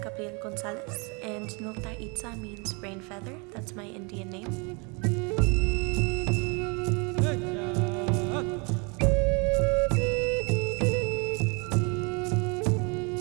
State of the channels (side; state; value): left; quieter; 31.8 dB